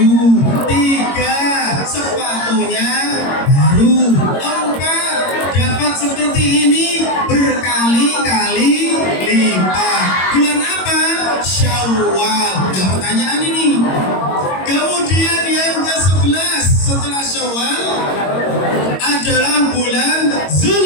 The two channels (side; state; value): right; late; 22 ms